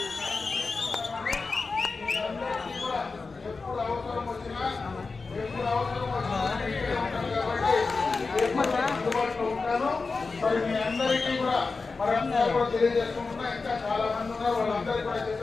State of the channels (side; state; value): right; quieter; 4.2 dB